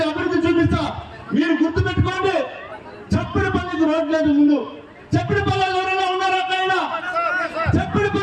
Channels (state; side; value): identical; both; correlation 1.00